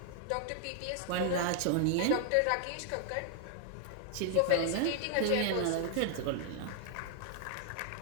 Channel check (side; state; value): both; different; correlation 0.00